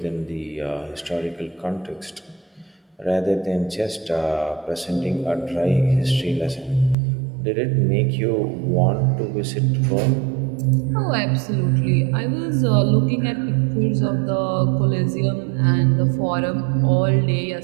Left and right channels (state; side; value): drops out; left; at 7.0 s